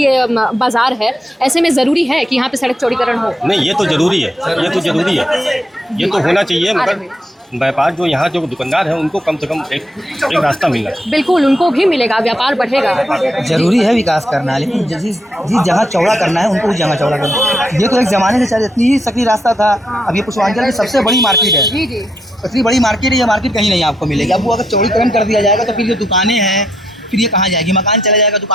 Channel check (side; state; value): both; normal; correlation 0.78